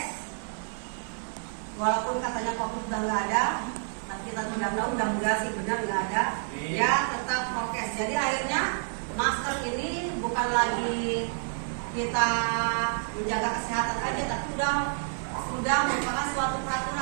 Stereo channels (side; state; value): left; silent; digital silence